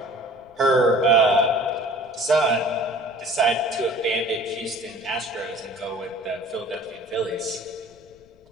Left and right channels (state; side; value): noise; left; rumble, 29 dB below the sound